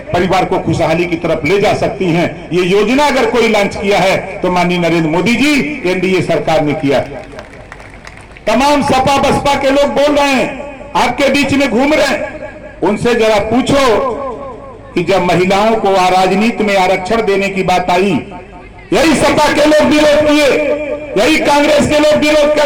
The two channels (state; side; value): identical; both; correlation 1.00